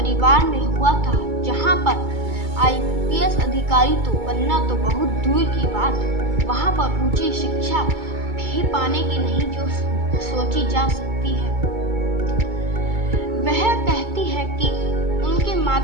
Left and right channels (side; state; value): left; late; 2.3 ms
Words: में हुआ था जहां पर आईपीएस अधिकारी तो बनना तो बहुत दूर की बात, वहां पर ऊंची शिक्षा भी पाने की नहीं जो सोची जा सकती है। वह कहती है कि उनके